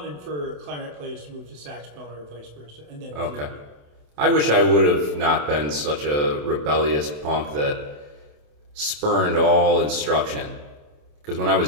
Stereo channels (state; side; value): late; left; 27 ms